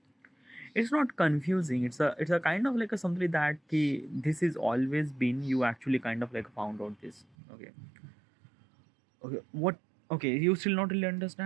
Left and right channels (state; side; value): drops out; left; at 7.2 s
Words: It's not confusing, it's a kind of like a something that this is always been, you actually kind of like found out this. Okay. Okay, what? Okay, you still not really